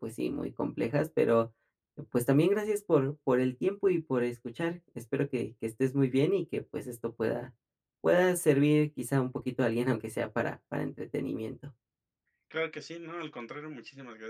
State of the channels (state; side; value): identical; both; correlation 1.00